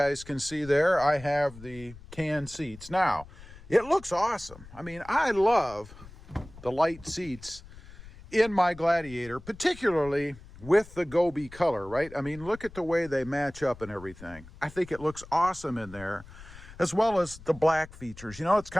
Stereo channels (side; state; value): left; noise; rumble, 18 dB below the sound